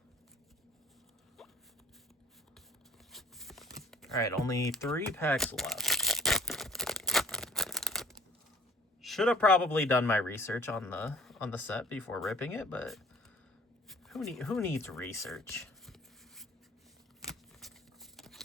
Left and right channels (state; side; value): normal; both; correlation 0.52